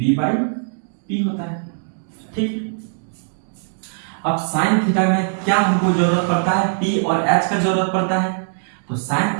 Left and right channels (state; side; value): silent; left; digital silence